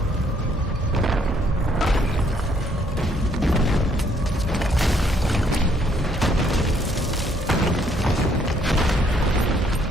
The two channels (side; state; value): both; normal; correlation 0.67